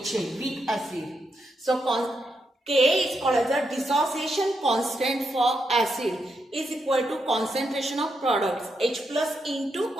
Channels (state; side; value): normal; both; correlation 0.82